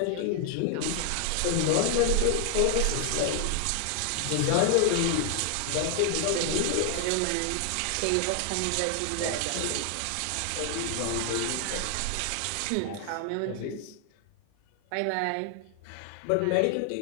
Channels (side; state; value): both; different; correlation 0.00